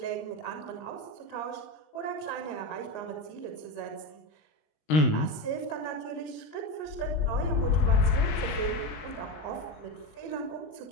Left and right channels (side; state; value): right; late; 19 ms